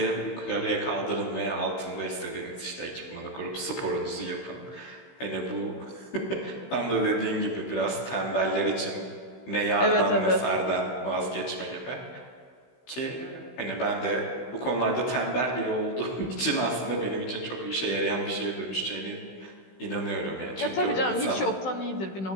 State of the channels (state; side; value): late; right; 16 ms